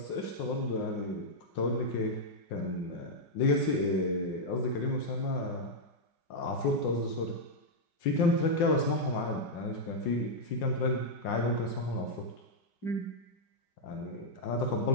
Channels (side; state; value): right; late; 5.6 ms